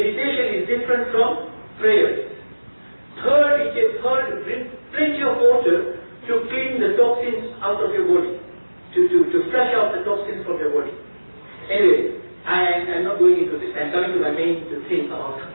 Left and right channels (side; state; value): both; inverted; correlation -1.00